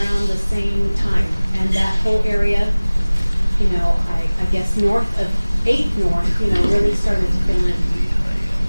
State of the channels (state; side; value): inverted; both; correlation -1.00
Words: the same time. And that whole area, you know, I guess north of 8th North, you know, really started to fill in.